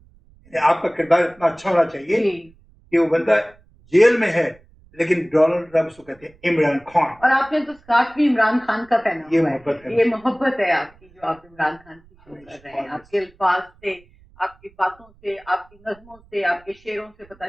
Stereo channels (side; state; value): right; noise; rumble, 29 dB below the sound